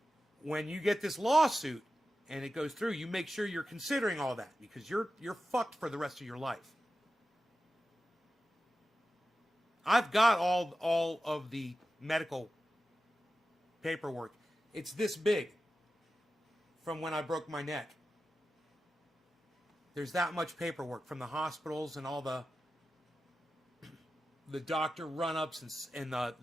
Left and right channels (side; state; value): both; normal; correlation 0.92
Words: when you get this lawsuit and it goes through, you make sure you're considering all that because you're fucked for the rest of your life. I've got all of the medical paperwork. It's this big from when I broke my neck. There's that much paperwork from the hospitals and all the the doctor run-ups and